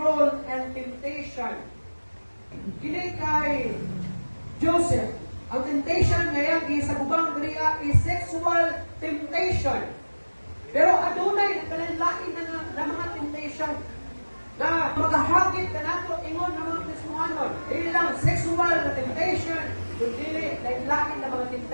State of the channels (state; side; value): inverted; both; correlation -1.00